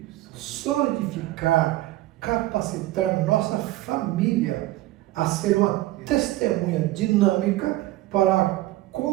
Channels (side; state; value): left; quieter; 16.8 dB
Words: solidificar, capacitar nossa família a ser uma testemunha dinâmica para a